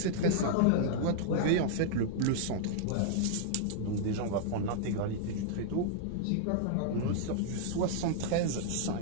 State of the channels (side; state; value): both; different; correlation -0.01